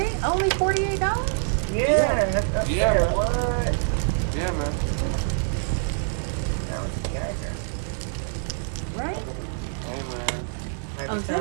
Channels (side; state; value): left; silent; digital silence